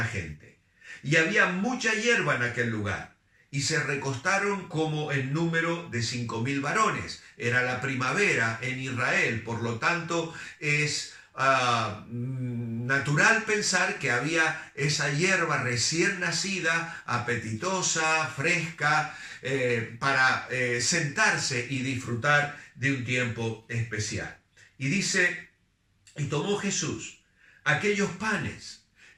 gente. Y había mucha hierba en aquel lugar, y se recostaron como en número de 5,000 varones. Era la primavera en Israel, por lo tanto es natural pensar que había esa hierba recién nacida, apetitosa, fresca, para sentarse y disfrutar de un tiempo especial. Y dice: y tomó Jesús aquellos panes,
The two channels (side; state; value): both; identical; correlation 1.00